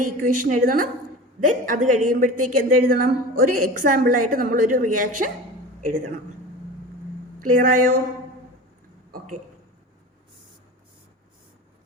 ഇക്വേഷൻ എഴുതണം. ദെൻ അത് കഴിയുമ്പോഴത്തേക്ക് എന്തെഴുതണം, ഒരു എക്സാമ്പിളായിട്ട് നമ്മളൊരു റിയാക്ഷൻ എഴുതണം. ക്ലിയർ ആയോ? ഓക്കെ.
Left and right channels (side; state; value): both; normal; correlation 0.33